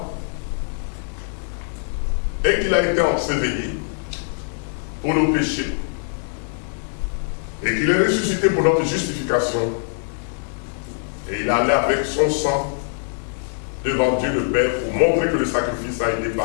et qu'il a été enseveli pour nos péchés et qu'il est ressuscité pour notre justification et il est allé avec son sang devant Dieu le Père pour montrer que le sacrifice a été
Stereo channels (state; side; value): silent; right; digital silence